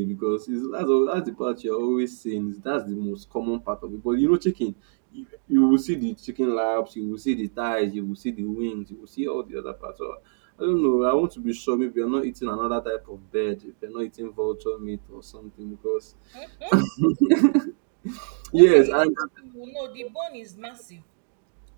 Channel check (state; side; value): silent; left; digital silence